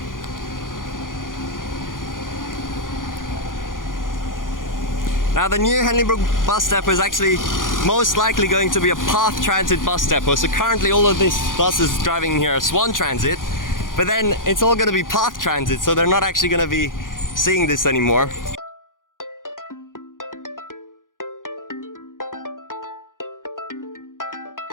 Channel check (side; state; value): right; late; 0.89 ms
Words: Now the new Henley Brook Bus Depot is actually most likely going to be a Perth transit bus depot. So currently all of these buses driving here are Swan Transit, but then it's all going to be Perth Transit, so they're not actually going to be seeing this anymore.